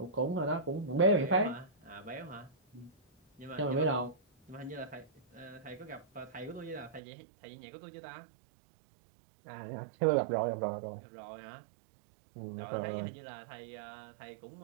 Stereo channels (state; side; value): drops out; left; at 7.0 s